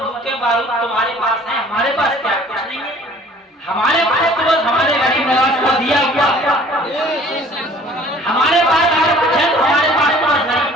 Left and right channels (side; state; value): both; normal; correlation 0.52